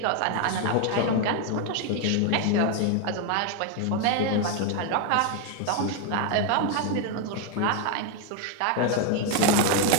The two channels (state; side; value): different; both; correlation 0.01